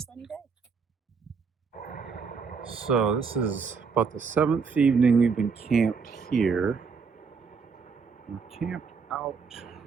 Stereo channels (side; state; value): left; quieter; 5.4 dB